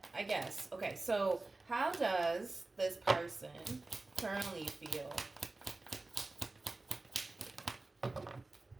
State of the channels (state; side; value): quieter; left; 3.2 dB